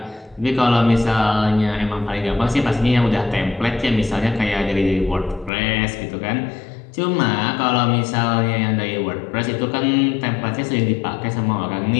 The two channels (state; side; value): drops out; right; at 5.5 s